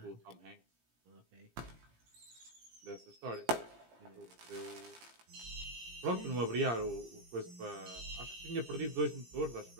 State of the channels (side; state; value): left; late; 17 ms